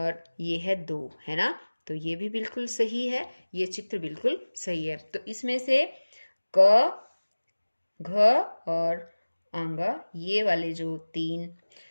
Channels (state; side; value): inverted; both; correlation -1.00